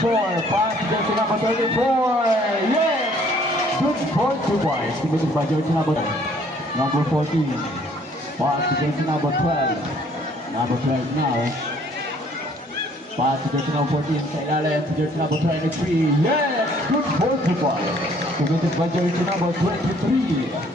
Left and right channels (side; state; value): both; normal; correlation 0.60